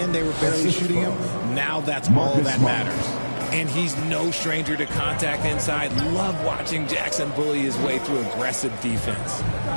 they were barely shooting them. Now that's all that matters. And he's no stranger to contact inside. Love watching Jackson bully his way through aggressive defense.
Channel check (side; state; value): both; inverted; correlation -1.00